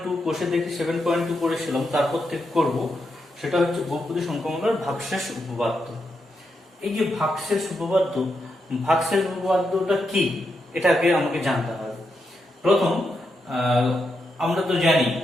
কোষে দেখি 7.2 করেছিলাম, তারপর থেকে করব সেটা হচ্ছে বহুপদী সংখ্যামালার ভাগশেষ উপপাদ্য। এই যে ভাগশেষ উপপাদ্যটা কি এটাকে আমাকে জানতে হবে। প্রথম আমরা তো জানি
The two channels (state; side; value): normal; both; correlation 0.83